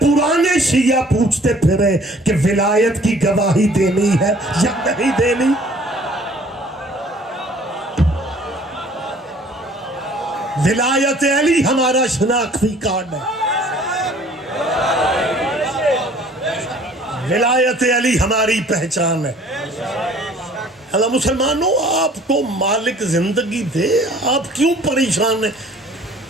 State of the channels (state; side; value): normal; both; correlation 0.53